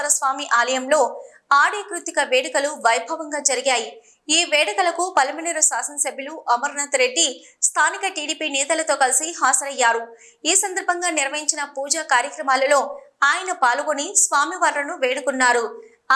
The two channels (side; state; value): both; identical; correlation 1.00